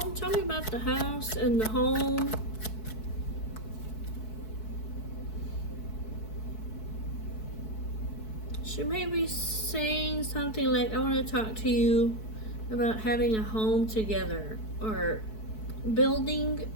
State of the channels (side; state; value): right; late; 4.6 ms